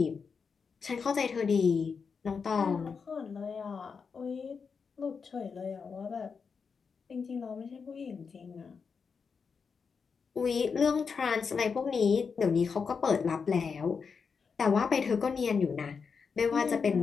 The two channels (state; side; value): quieter; right; 5.6 dB